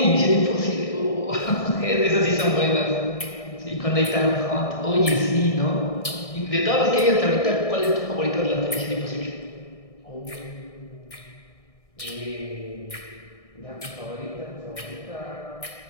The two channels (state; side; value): late; right; 1.6 ms